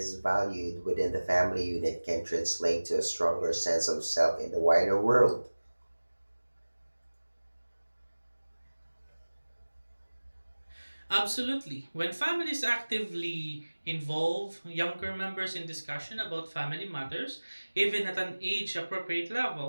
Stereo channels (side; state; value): both; inverted; correlation -1.00